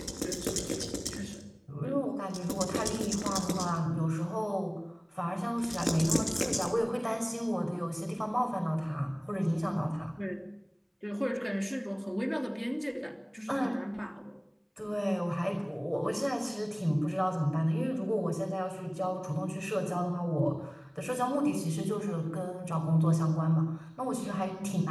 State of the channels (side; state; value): both; identical; correlation 1.00